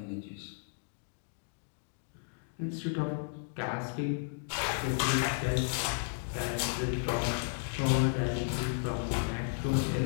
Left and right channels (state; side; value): silent; right; digital silence